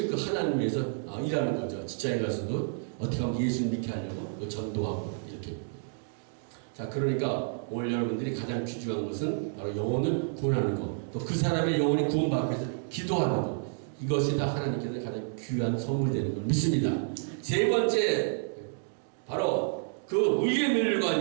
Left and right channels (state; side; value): silent; left; digital silence